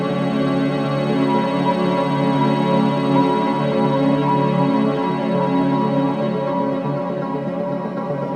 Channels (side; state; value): both; identical; correlation 1.00